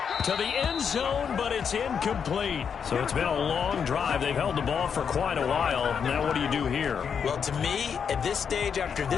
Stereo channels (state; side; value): quieter; right; 7.0 dB